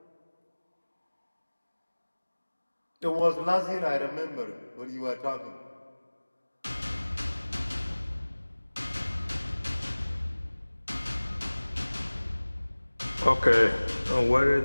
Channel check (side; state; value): both; inverted; correlation -1.00